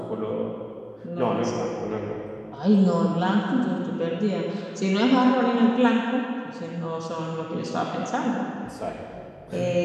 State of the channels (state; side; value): identical; both; correlation 1.00